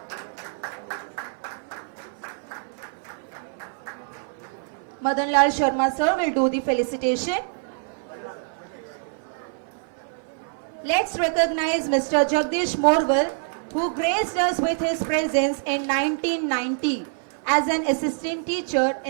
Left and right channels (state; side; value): silent; left; 58 dB below the other